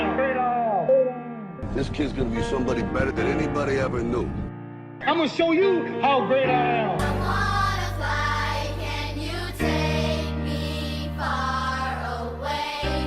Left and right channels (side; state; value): both; identical; correlation 1.00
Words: Great I am. This kid's gonna be somebody better than anybody ever knew. I'm gonna show you how great I am. I wanna fly, can you take me far away?